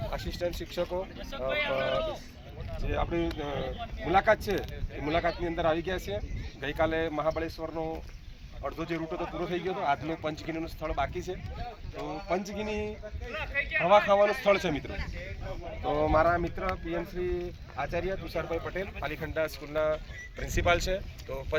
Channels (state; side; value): identical; both; correlation 1.00